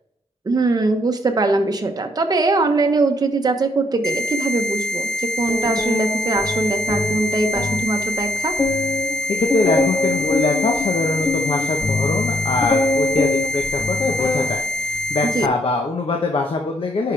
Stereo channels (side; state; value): both; normal; correlation 0.70